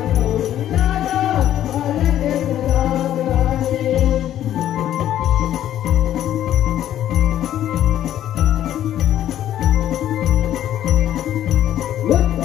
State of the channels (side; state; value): right; quieter; 11.7 dB